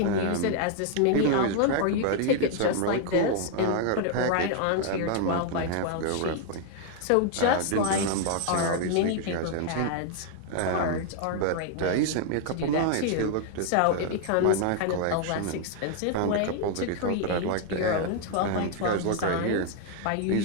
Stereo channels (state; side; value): different; both; correlation 0.00